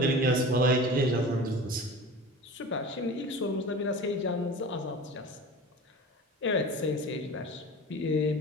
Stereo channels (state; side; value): normal; both; correlation 0.35